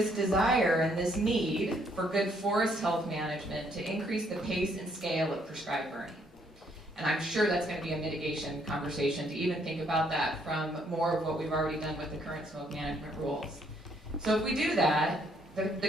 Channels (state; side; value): normal; both; correlation 0.69